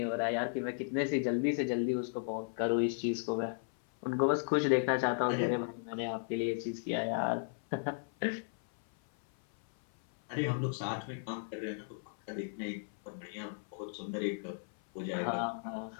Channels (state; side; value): silent; right; 54 dB below the other